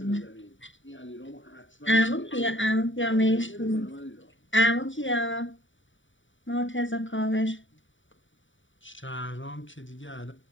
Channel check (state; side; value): late; right; 0.55 ms